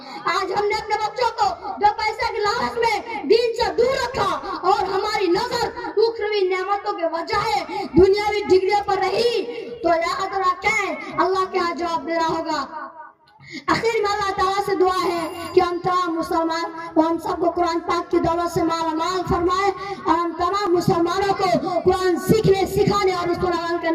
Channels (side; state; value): both; identical; correlation 1.00